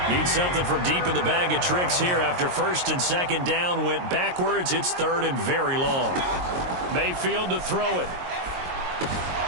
Need something from deep in the bag of tricks here after 1st and 2nd down went backwards. It's 3rd and very long. Mayfield to throw it.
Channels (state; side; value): late; left; 22 ms